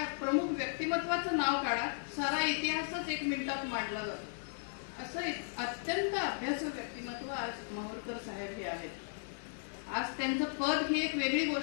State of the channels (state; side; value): silent; right; digital silence